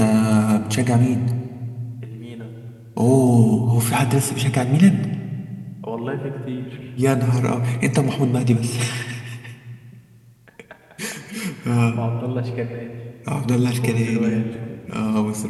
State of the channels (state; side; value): identical; both; correlation 1.00